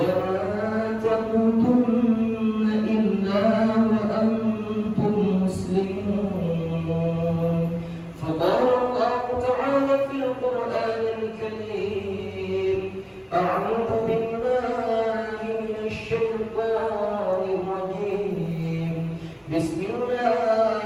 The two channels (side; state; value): both; identical; correlation 1.00